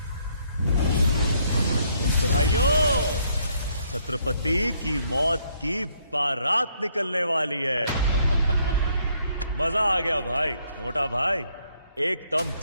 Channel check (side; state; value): both; inverted; correlation -0.69